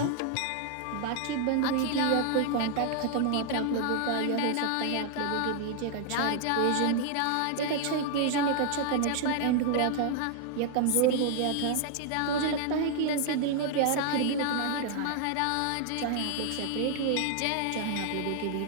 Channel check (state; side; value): different; both; correlation 0.00